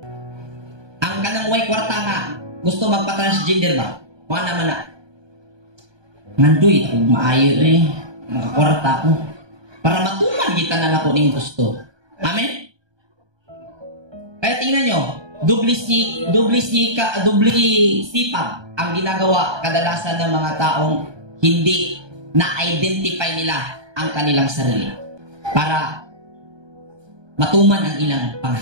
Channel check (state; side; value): late; left; 1.2 ms